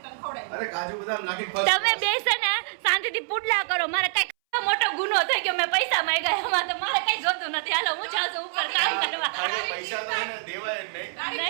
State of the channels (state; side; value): silent; left; 61 dB below the other